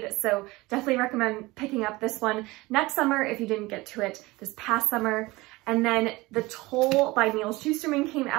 So definitely recommend picking up this one next summer if you didn't get to it this past summer. And then The Toll by Neil Shusterman came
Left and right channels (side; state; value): left; quieter; 21.3 dB